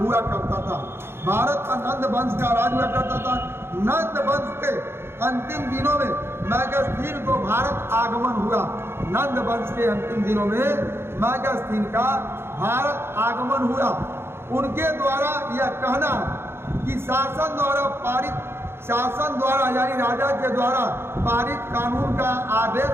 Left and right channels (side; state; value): left; late; 0.12 ms